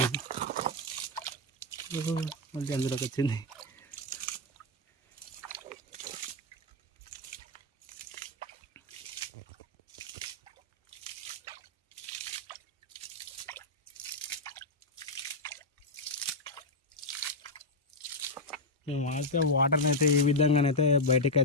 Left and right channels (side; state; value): both; normal; correlation 0.00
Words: మళ్ళీ అందులోకి వచ్చింది. మేము అయితే వాటర్ని అయితే ఈ విధంగానైతే బయటకు